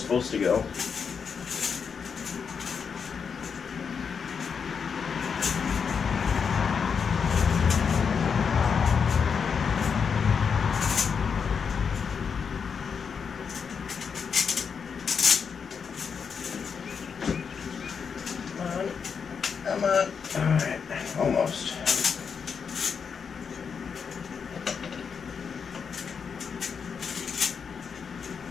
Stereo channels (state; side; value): quieter; right; 6.3 dB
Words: to go. Alright, almost.